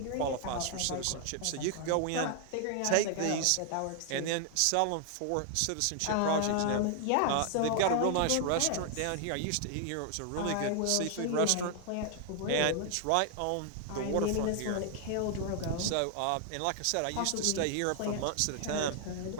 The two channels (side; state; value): both; different; correlation 0.00